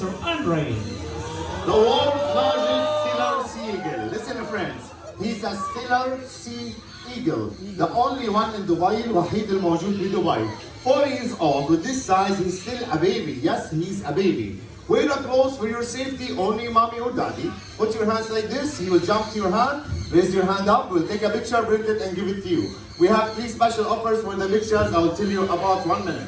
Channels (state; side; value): identical; both; correlation 1.00